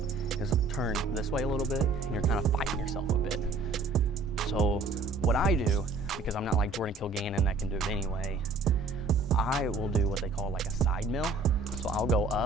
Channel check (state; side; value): quieter; left; 3.7 dB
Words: is turned this way a little bit and you're kind of fighting yourself a bit. So what I do, because I'm not like Jordan Kilgannon that can do it anyway, I will do what they call like a side mill. So I'll go